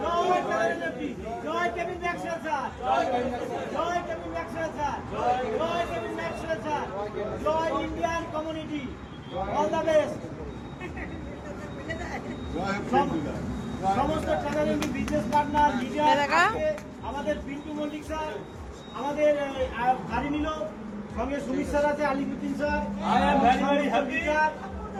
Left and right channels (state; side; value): identical; both; correlation 1.00